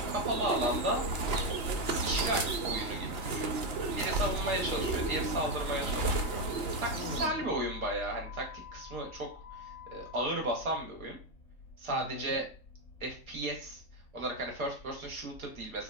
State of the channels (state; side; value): late; right; 2.9 ms